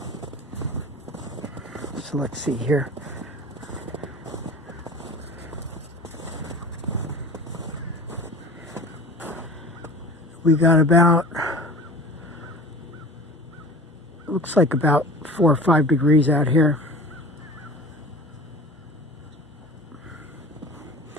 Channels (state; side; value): normal; both; correlation 0.39